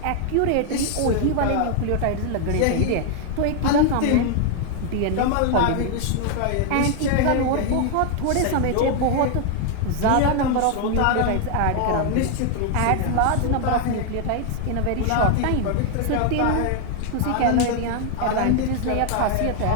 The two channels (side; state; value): both; different; correlation 0.00